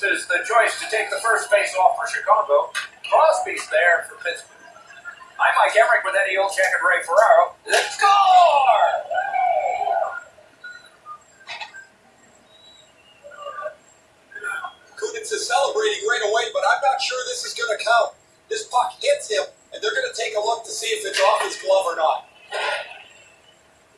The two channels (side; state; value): both; identical; correlation 1.00